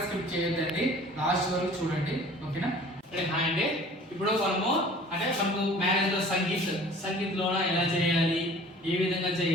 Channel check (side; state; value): both; normal; correlation 0.47